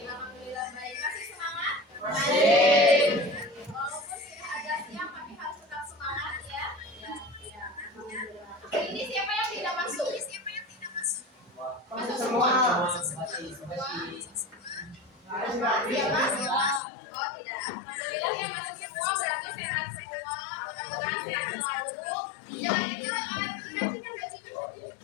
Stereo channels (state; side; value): drops out; right; at 16.8 s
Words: baik. Masih semangat? Walaupun sudah agak siang tapi harus tetap semangat ya. Hari ini siapa yang tidak masuk? Masuk semua. Siapa? Oh tidak. Alhamdulillah yang masuk semua berarti sehat semua. Mudah-mudahan sehat selalu. Jangan itu dikasihkan bajunya.